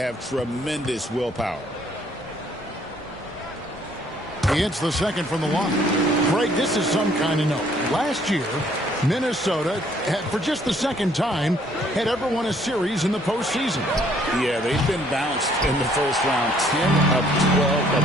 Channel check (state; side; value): normal; both; correlation 0.63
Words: tremendous willpower. He hits the second from the line. Greg, this is some kind of note. Last year, Minnesota, for just the second time, had ever won a series in the postseason. Yeah, they've been bounced in the first round 10 of 12